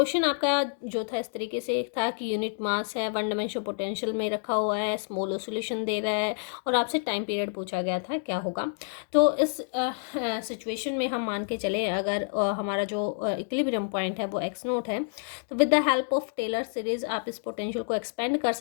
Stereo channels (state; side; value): silent; right; digital silence